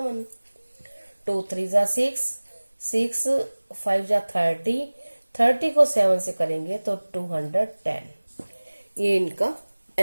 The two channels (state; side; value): inverted; both; correlation -1.00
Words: 2 3 जा 6, 6 5 जा 30, 30 को 7 से करेंगे तो 210। ये इनका